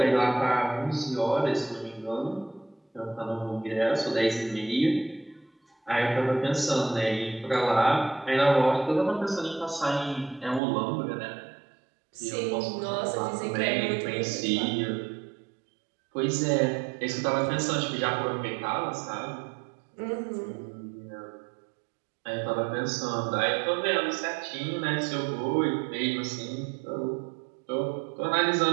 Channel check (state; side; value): drops out; left; at 10.6 s